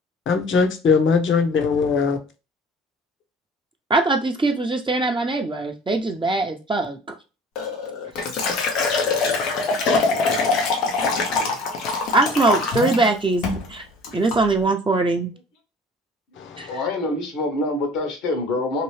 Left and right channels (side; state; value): both; normal; correlation 0.47